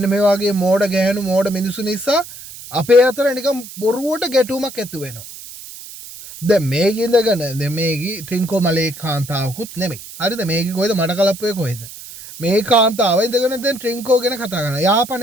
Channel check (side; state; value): right; noise; hiss, 14 dB below the sound